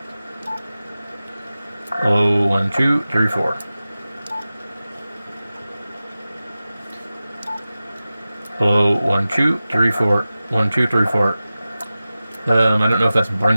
Hello, 1, 2, 3, 4. Hello, 1, 2, 3, 4. 1, 2, 3, 4. I don't know if that's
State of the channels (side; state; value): both; inverted; correlation -0.95